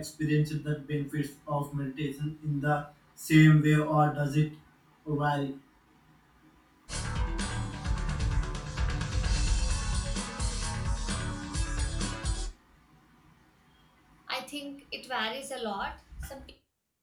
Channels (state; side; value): identical; both; correlation 1.00